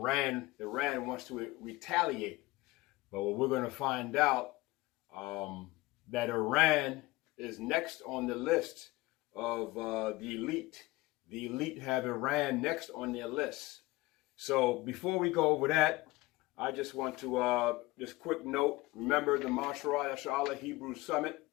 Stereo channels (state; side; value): quieter; right; 20.2 dB